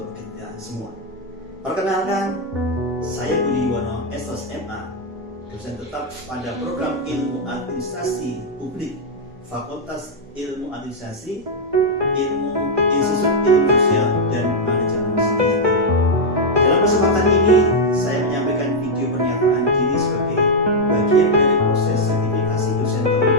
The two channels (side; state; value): both; normal; correlation -0.02